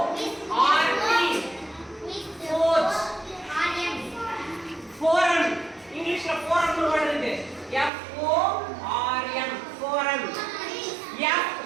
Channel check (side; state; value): left; drops out; at 7.9 s